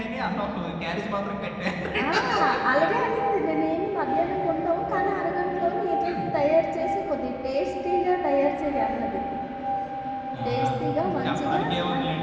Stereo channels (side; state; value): both; identical; correlation 1.00